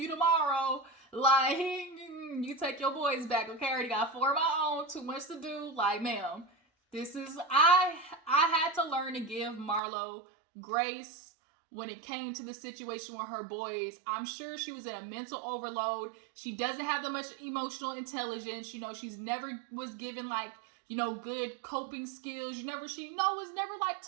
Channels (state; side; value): drops out; left; at 9.8 s